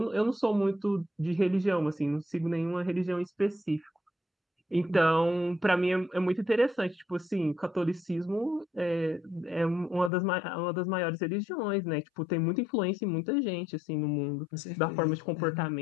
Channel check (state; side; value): drops out; right; at 10.1 s